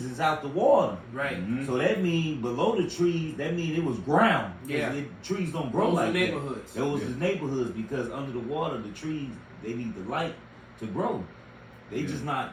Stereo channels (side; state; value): both; identical; correlation 1.00